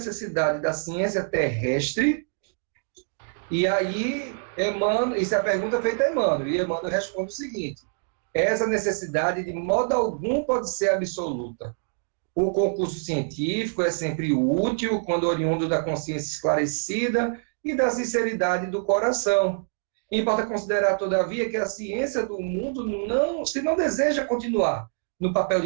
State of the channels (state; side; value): silent; left; digital silence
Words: da ciência terrestre? E aí, Emmanuel, isso é a pergunta feita a Emmanuel, e Emmanuel responde o seguinte: essa necessidade de modo algum pode ser absoluta. O concurso científico é sempre útil quando oriundo da consciência esclarecida e da sinceridade do coração. Importa considerar, todavia, que a ciência do mundo se não deseja continuar no papel